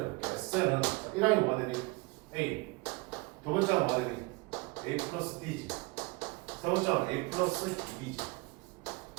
SN은 1항이 뭐가 되니? A. 두 번째가 뭐가 되니? A 플러스 B지. 세 번째는 A 플러스 B지.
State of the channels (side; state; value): left; quieter; 25.2 dB